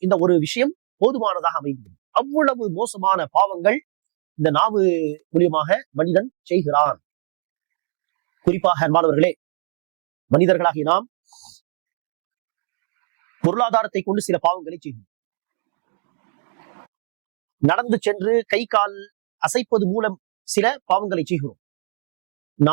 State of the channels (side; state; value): left; silent; digital silence